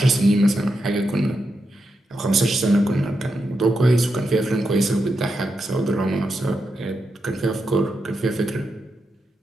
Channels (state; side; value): normal; both; correlation 0.86